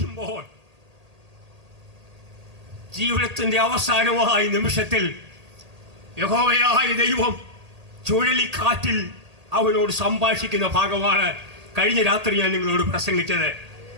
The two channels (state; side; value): late; left; 1.8 ms